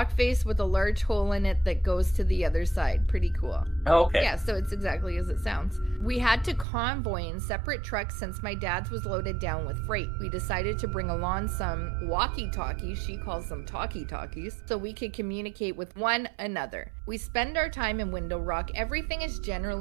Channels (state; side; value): drops out; left; at 6.7 s